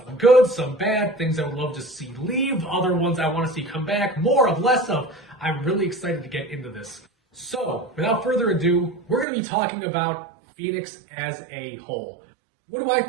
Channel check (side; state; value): left; drops out; at 9.2 s